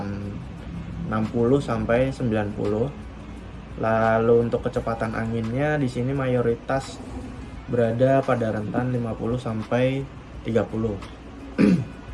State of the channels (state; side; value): identical; both; correlation 1.00